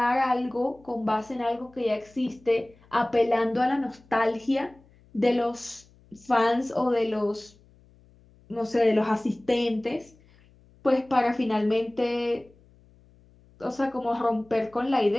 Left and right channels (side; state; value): left; noise; hum, 29 dB below the sound